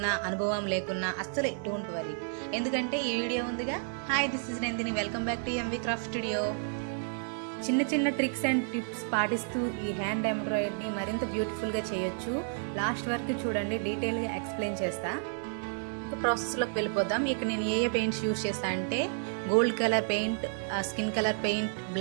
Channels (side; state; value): left; silent; 57 dB below the other